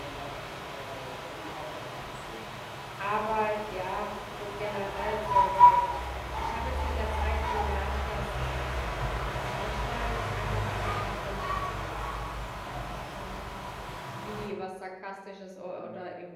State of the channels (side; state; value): both; identical; correlation 1.00